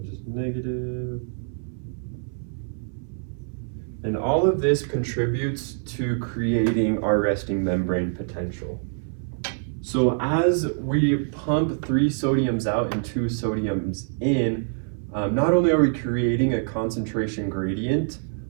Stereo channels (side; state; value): left; silent; 60 dB below the other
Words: just negative. And all of this contributes to creating our resting membrane potential. So as we pump 3 sodiums out and 2 sodiums in, not only are we creating a concentration gradient